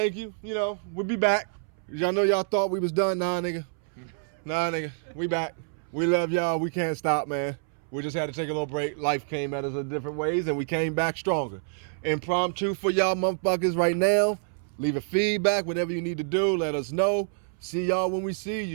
you. We'll be back. Y'all know y'all thought we was done. Nah, nigga. We back. We love y'all. We can't stop, man. We just had to take a little break. Life came at us in different ways, and we came back stronger. Impromptu for y'all motherfuckers right now. Leave a feedback, whatever you need to do. Let us know. See y'all when we see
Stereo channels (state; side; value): silent; left; 60 dB below the other